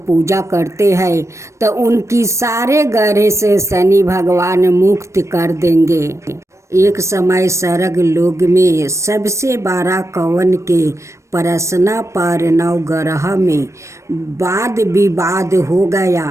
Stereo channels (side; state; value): left; late; 0.14 ms